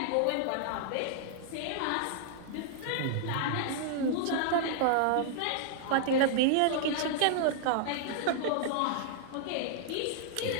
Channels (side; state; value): both; different; correlation -0.01